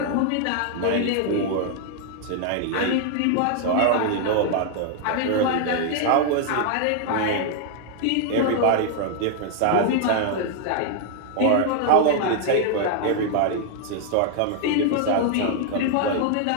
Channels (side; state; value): both; different; correlation 0.00